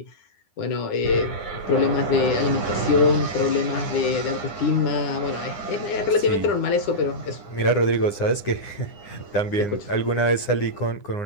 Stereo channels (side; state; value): right; late; 9.8 ms